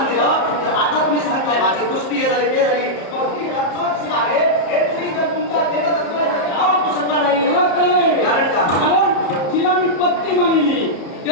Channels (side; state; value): right; late; 34 ms